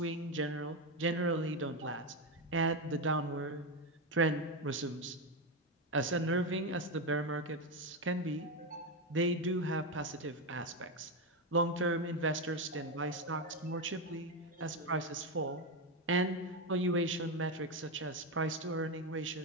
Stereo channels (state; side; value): normal; both; correlation 0.10